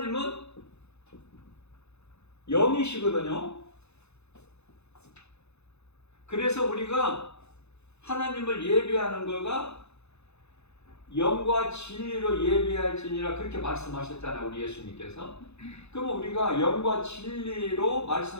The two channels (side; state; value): right; late; 0.81 ms